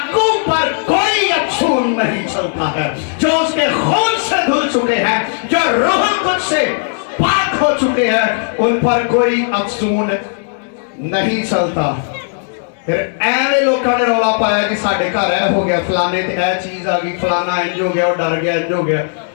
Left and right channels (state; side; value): silent; right; digital silence